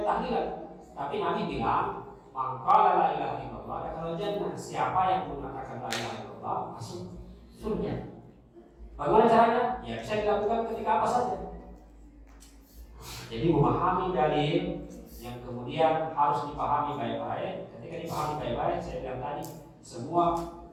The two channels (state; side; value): identical; both; correlation 1.00